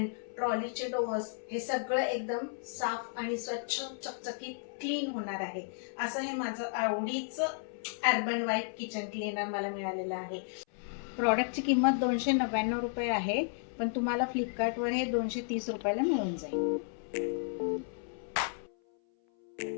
ट्रॉलीचे डोअर्स, हे सगळं एकदम साफ आणि स्वच्छ चकचकीत क्लीन होणार आहे. असं हे माझं आवडीचं अर्बन वाईट किचन क्लीनर मला मिळालेलं आहे. प्रॉडक्टची किंमत 299 रुपये आहे, पण तुम्हाला फ्लिपकार्टवर हे 230 रुपयाला मिळून जाईल.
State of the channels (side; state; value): right; silent; 56 dB below the other